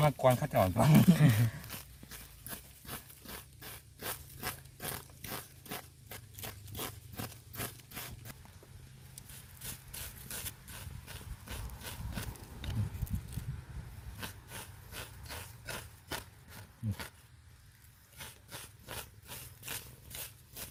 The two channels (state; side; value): identical; both; correlation 1.00